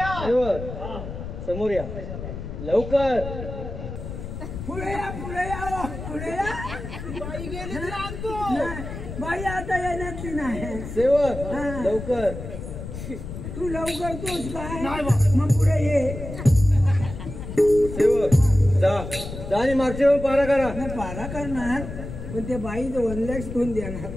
समोर या लवकर. पुढे या पुढे या पुढे या. बाई गेली तर आणतो. नाही, बाई आता येण्यातली नाही. सेवक हा. लवकर. तू लवकर तोच काय नाही बा. मग पुढे ये. सेवक जा जा आणि मागच्या वेळी पारा करा. नाही पारा करणार पण ते बाई 1 लाख कोण देणार?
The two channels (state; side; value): noise; left; rumble, 8 dB below the sound